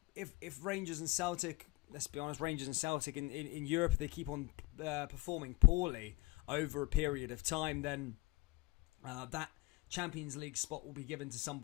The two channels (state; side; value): quieter; right; 22.5 dB